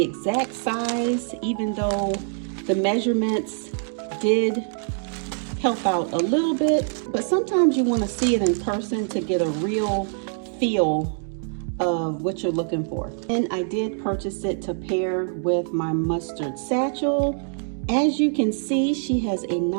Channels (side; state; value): left; silent; 59 dB below the other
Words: exact size, even though the measurements did help out a little bit. But sometimes you want to see it in person to get a real feel of what you're looking for. And I did purchase it to pair with my mustard satchel. As you can see, she has a